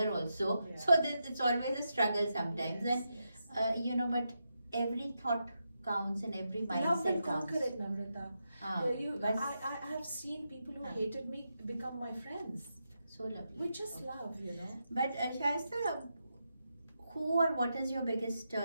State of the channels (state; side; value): inverted; both; correlation -0.86